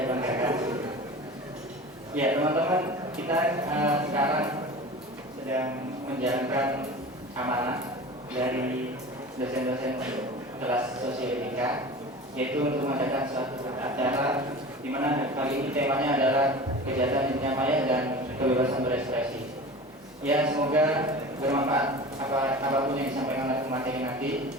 banggakan. Ya teman-teman, kita sekarang sedang menjalankan amanah dari dosen-dosen kelas sosioetika, yaitu untuk mengadakan suatu acara di mana kali ini temanya adalah kejahatan dunia maya dan kebebasan berekspresi. Ya, semoga bermanfaat apapun yang disampaikan oleh pemateri nanti.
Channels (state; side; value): normal; both; correlation 0.35